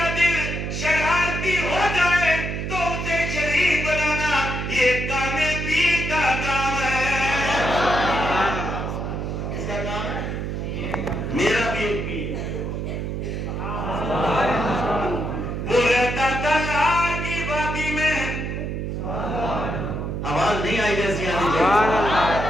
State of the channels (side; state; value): right; noise; hum, 3 dB below the sound